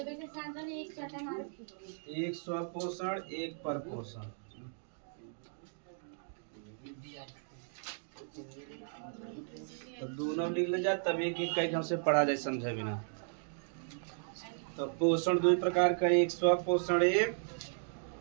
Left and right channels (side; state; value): left; silent; digital silence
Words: एक स्वपोषण, एक परपोषण। तो दोनों लिख ले जा, तब एक एक कई हमसे पढ़ा जाए समझे बिना। तो पोषण दो प्रकार का, एक स्वपोषण, एक